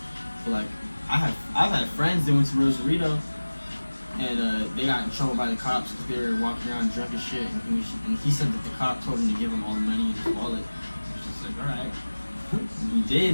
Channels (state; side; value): inverted; both; correlation -1.00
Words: But like I've had friends that went to Rosarito. And they got in trouble by the cops because they were walking around drunk as shit. And he said that the cop told him to give him all the money in his wallet. It was just like, all right. And he